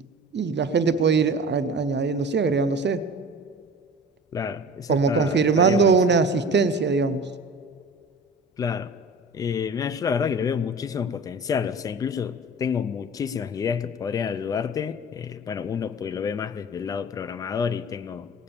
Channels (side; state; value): both; normal; correlation 0.39